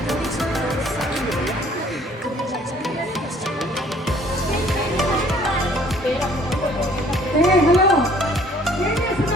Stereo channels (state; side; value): normal; both; correlation 0.57